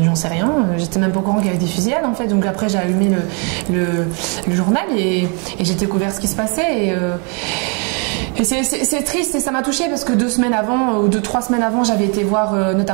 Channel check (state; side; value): quieter; left; 35.8 dB